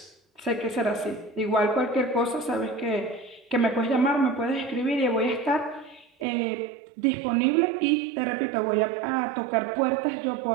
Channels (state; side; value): drops out; left; at 6.2 s